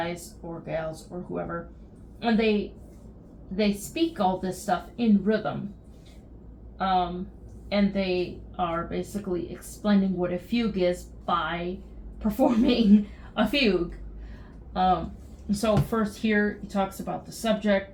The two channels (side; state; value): both; identical; correlation 1.00